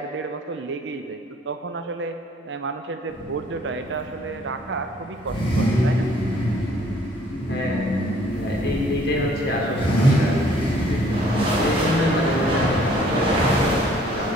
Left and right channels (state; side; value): normal; both; correlation 0.59